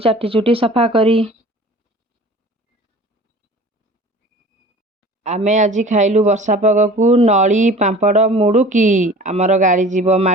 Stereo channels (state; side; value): normal; both; correlation 0.43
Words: चुटी सफा करी। आमे आज खाइलु वर्षा पागकू नली पांपड़ मुड़ुकी आमर गाड़ी जीव